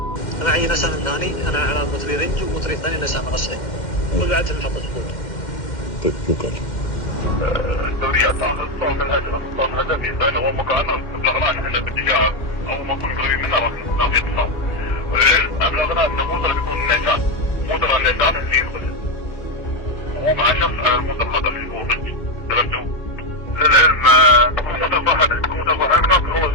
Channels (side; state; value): right; late; 2.1 ms